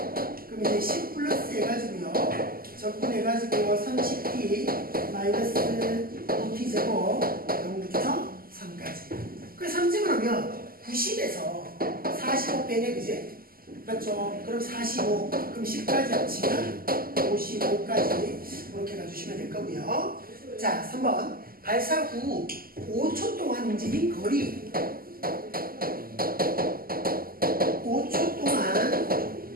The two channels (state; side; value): late; left; 0.42 ms